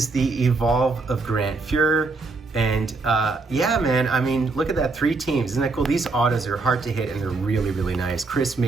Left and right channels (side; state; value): left; quieter; 3.8 dB